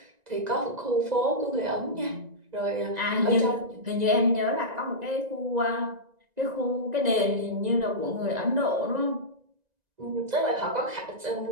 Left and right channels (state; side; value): late; left; 1.9 ms